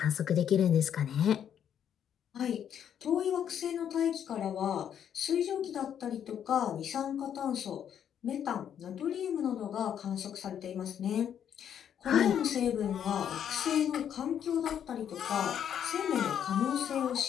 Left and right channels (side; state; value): right; quieter; 9.1 dB